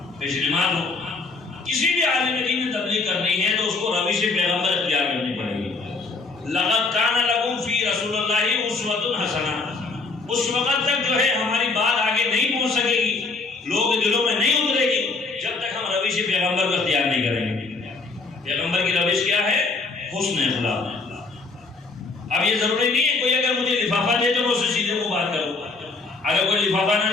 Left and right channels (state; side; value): quieter; right; 3.9 dB